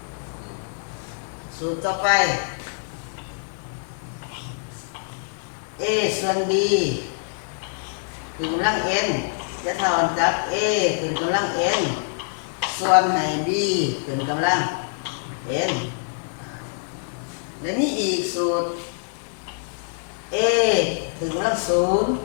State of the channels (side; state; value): right; silent; 57 dB below the other